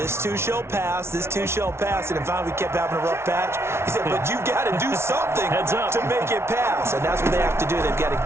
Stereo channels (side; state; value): left; late; 0.12 ms